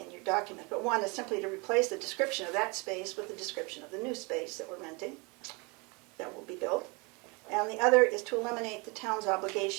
your document. But one is simply to replace the description of that space with the description of the new space that we're renting, that will be built. And the other is to eliminate the town's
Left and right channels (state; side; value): quieter; left; 29.0 dB